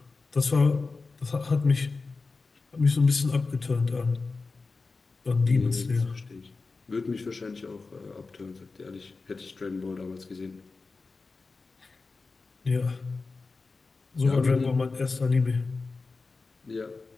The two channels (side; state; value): right; quieter; 4.0 dB